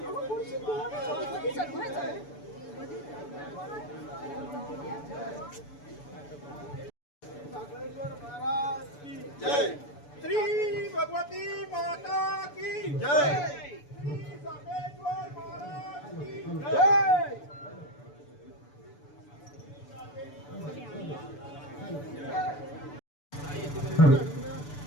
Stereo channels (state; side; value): late; right; 6.9 ms